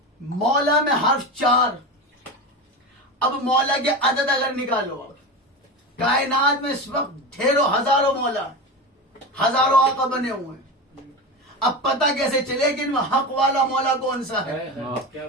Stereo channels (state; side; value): normal; both; correlation 0.23